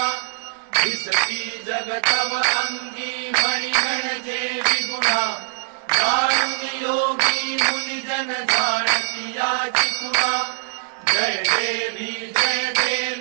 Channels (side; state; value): left; silent; digital silence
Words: दिसती जगतव अंगी मणी म्हणजे विगुणा जाणून योगी मुनिजन जाणती याची खुणा जय देवी